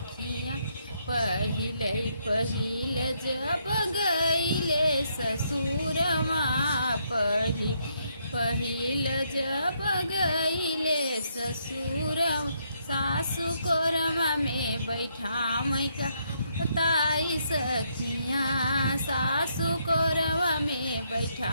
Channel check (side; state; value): both; inverted; correlation -0.75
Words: पहिले पहिले जब गईले ससुरमा, पहिल जब गईले ससुरमा, सासु कोरमा में बैठा मैका बताई सखिया, सासु कोरमा में